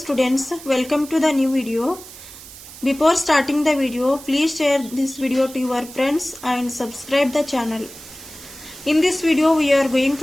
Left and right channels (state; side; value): noise; right; hiss, 16 dB below the sound